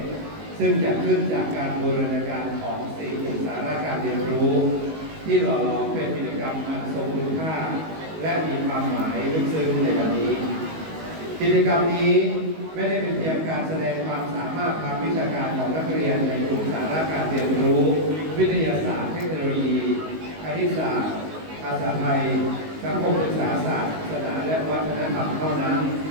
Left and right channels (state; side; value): late; left; 19 ms